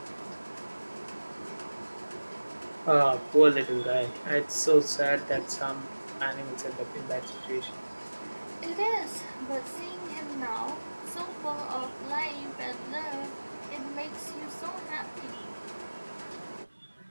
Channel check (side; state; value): both; inverted; correlation -1.00